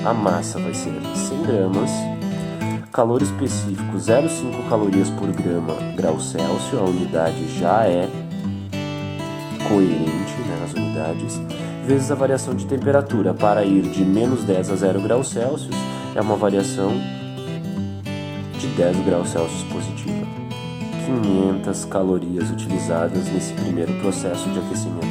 a massa vai ser 100 gramas, calor específico 0,5 calorias por grau Celsius, a unidade já é coerente, né, nas unidades, vezes a variação de temperatura. Para ir de menos 10 a 0 graus Celsius, é uma variação de 10 graus Celsius positiva. 500 calorias utilizadas nesse primeiro processo de aquecimento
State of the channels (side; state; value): both; identical; correlation 1.00